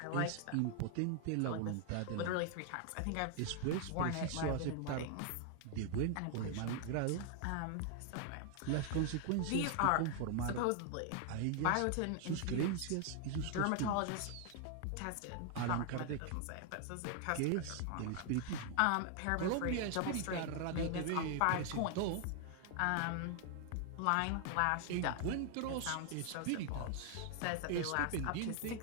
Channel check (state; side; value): different; both; correlation 0.00